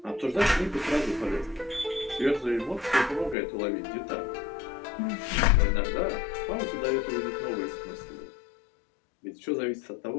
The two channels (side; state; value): right; drops out; at 3.4 s